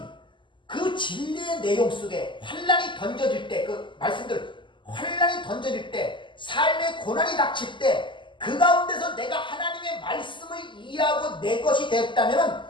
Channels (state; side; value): late; right; 0.24 ms